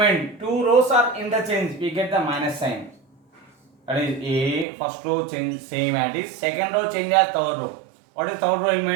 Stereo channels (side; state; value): left; drops out; at 4.7 s